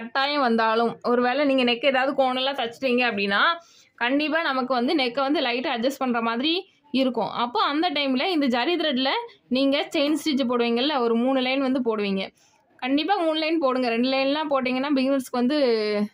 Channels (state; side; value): identical; both; correlation 1.00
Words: வந்தாலும், ஒரு வேளை நீங்கள் நெக் ஏதாவது கோணெல்லாம் தைச்சிட்டீங்க அப்படின்னா கண்டிப்பாக நமக்கு வந்து நெக்கை வந்து லைட்டாக அட்ஜஸ்ட் பண்ணுற மாதிரி இருக்கும். அப்போ அந்த டைமில் இந்த ஜரி த்ரெட்டில் நீங்கள் செயின் ஸ்டிச் போடுவீங்கள்ல, ஒரு 3 லைன் வந்து போடுவீங்க. கண்டிப்பாக 3 லைன் போடுங்க. 2 லைன்லாம் போட்டிங்கன்னா பிகினர்ஸ்க்கு வந்து